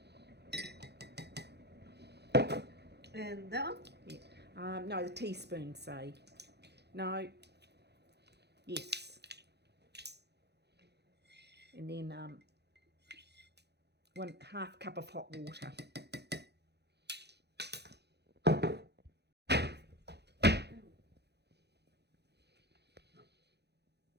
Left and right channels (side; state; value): left; late; 0.49 ms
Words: And that one? Yeah. No, the teaspoon, say. No. Yes. And then 1/2 cup of hot water.